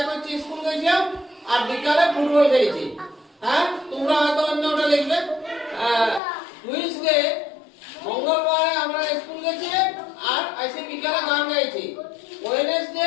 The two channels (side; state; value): right; drops out; at 6.2 s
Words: হচ্ছে স্কুল গেছিলাম আর বিকালে ফুটবল খেলেছি। হ্যাঁ তোমরা হয়তো অন্যটা লিখবে। টুইসডে মঙ্গলবারে আমরা স্কুল গেছি আর এসে বিকালে গান গাইছি।